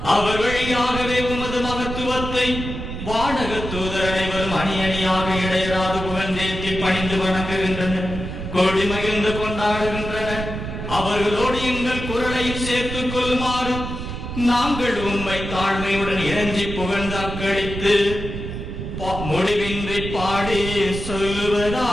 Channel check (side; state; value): right; noise; rumble, 7 dB below the sound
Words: அவர் வழியாகவே உமது மகத்துவத்தை வானக தூதர் அனைவரும் அணி அணியாக இடையராது புகழ்ந்தேற்றி பணிந்து வணங்குகின்றனர், கோடி மகிழ்ந்து கொண்டாடுகின்றனர். அவர்களோடு எங்கள் குரலையும் சேர்த்துக் கொள்ளுமாறு நாங்கள் உம்மை தாழ்மையுடன் இறஞ்சி புகழ்ந்து அக்களித்து முடிவின்றி பாடி